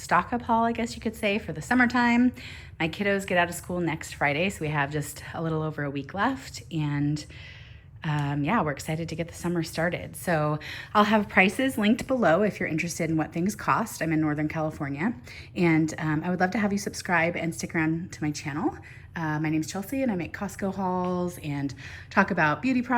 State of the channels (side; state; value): both; identical; correlation 1.00